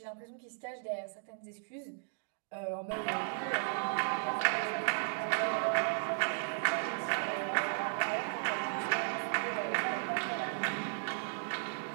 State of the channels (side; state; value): left; silent; digital silence